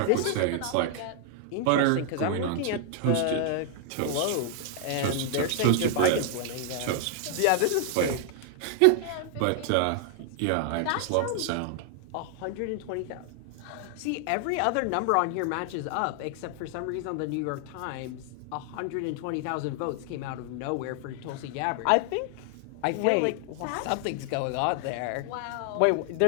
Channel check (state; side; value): different; both; correlation 0.00